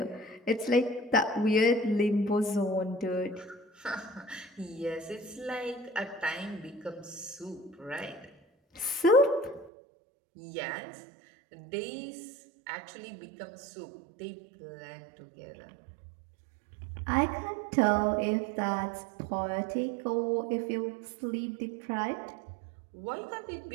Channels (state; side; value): drops out; left; at 9.7 s